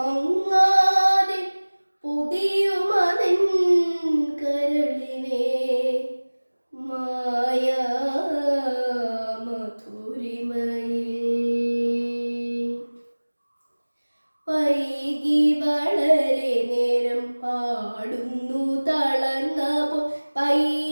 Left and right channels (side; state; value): both; inverted; correlation -1.00